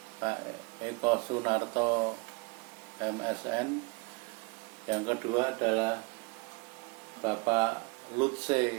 Pak Eko Sunarto MSN. Yang kedua adalah Bapak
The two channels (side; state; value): left; quieter; 28.9 dB